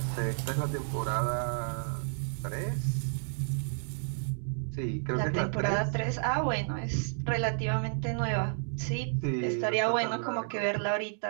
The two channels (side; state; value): left; silent; digital silence